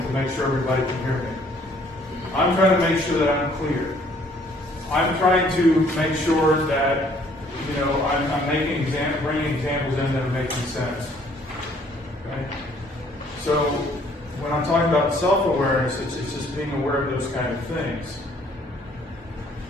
to make sure everybody can hear me. I'm trying to make sure that I'm clear. I'm trying to make sure that, you know, I'm bringing examples in that are making sense. Okay? So when I'm talking about self-awareness, it's just being aware of those kind of things.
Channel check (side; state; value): both; normal; correlation 0.61